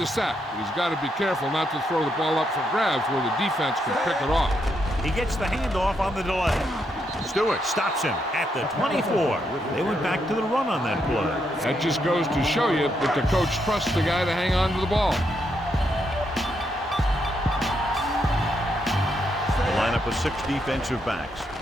sack, but he's got to be careful not to throw the ball up for grabs where the defense can pick it off. He gets the handoff on the delay. Stewart stops him at the 24. They went back to the run on that play. That just goes to show you that the coach trusts the guy to hang on to the ball. The lineup of 6 defensive backs.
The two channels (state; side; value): normal; both; correlation 0.79